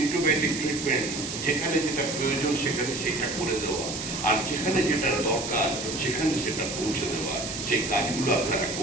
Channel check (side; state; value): right; noise; hiss, 6 dB below the sound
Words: ট্রিটমেন্ট, যেখানে যেটা প্রয়োজন সেখানে সেটা করে দেওয়া, আর যেখানে যেটা দরকার সেখানে সেটা পৌঁছে দেওয়া। সেই কাজগুলো আপনারা